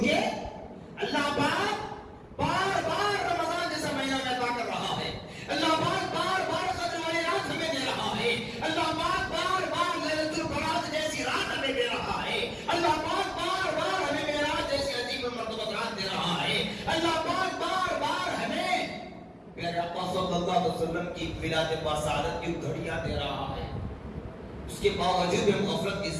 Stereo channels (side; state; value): both; identical; correlation 1.00